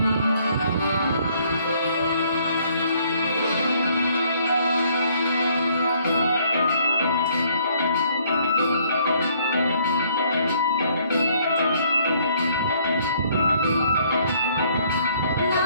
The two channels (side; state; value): both; inverted; correlation -0.64